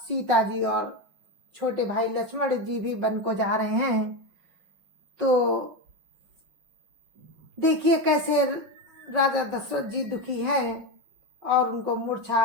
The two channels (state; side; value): late; left; 5.7 ms